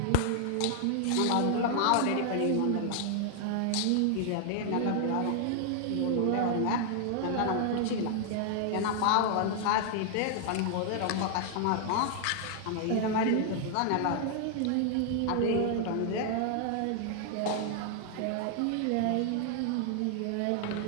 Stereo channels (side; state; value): both; different; correlation 0.00